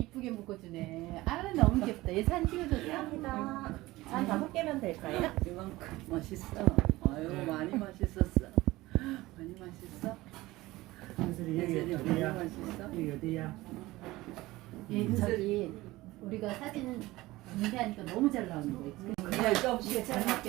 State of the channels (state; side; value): quieter; left; 18.8 dB